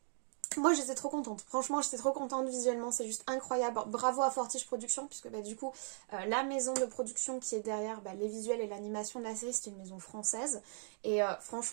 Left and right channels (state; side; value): silent; left; 52 dB below the other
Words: Moi j'étais trop contente, franchement j'étais trop contente visuellement, c'est juste incroyable. Bravo à Fortiche Productions, puisque bah, du coup la maison de production qui est derrière les visuels et l'animation de la série, c'est une maison française. Et